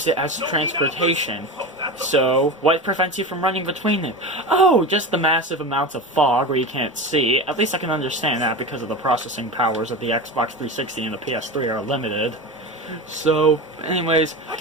it as transportation. So, what prevents you from running between it? Oh, just the massive amounts of fog where you can't see. At least I can understand that because of the processing powers of the Xbox 360 and the PS3 are limited. So, anyways,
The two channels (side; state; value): both; normal; correlation 0.26